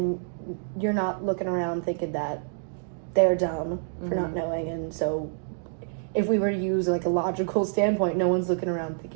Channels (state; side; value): silent; left; digital silence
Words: you're not looking around thinking that they're dumb for not knowing, and so if we were to use like a logical standpoint, no one's looking around